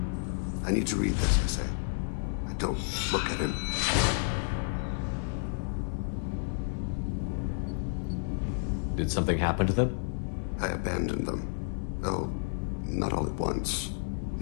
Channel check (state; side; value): silent; right; 57 dB below the other